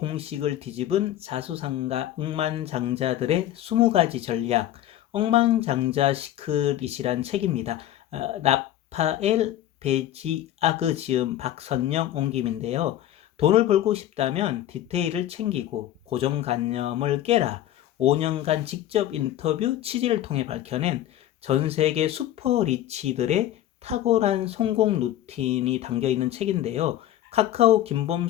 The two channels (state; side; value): quieter; right; 12.7 dB